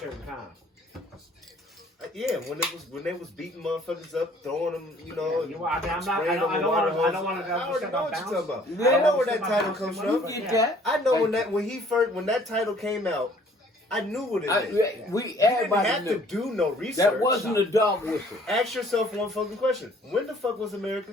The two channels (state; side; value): normal; both; correlation 0.57